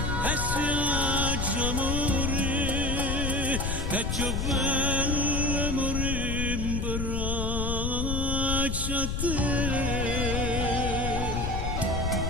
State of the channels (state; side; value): noise; left; rumble, 2 dB below the sound